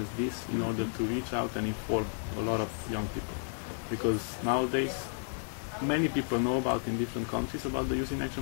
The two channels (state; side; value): silent; right; digital silence